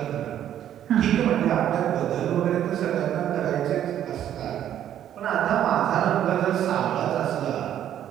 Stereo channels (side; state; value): left; quieter; 10.8 dB